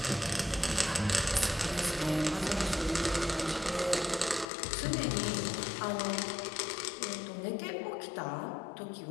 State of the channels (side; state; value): right; drops out; at 4.5 s